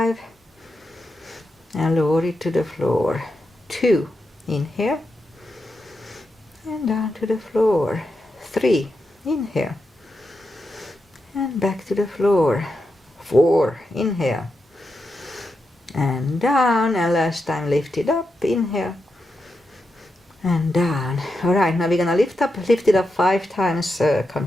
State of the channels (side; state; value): both; normal; correlation 0.87